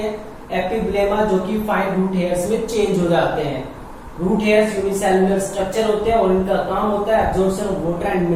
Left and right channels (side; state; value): both; identical; correlation 1.00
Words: एपिब्लेमा जो कि फाइन रूट हेयर्स में चेंज हो जाते हैं। रूट हेयर्स यूनिसेल्युलर स्ट्रक्चर होते हैं और इनका काम होता है absorption of water and